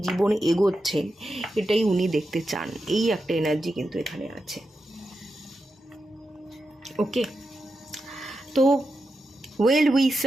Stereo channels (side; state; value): both; normal; correlation 0.88